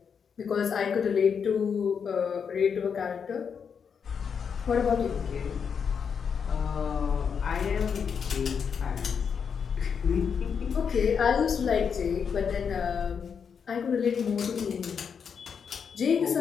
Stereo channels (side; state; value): right; quieter; 6.7 dB